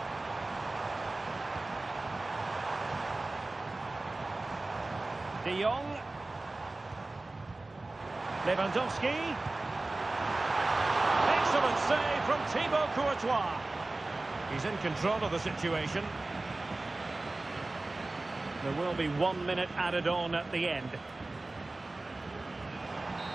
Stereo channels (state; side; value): quieter; left; 3.0 dB